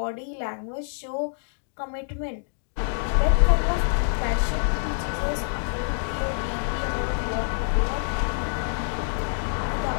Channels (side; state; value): right; silent; digital silence